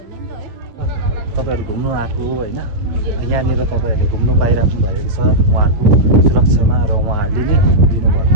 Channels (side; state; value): left; late; 9.2 ms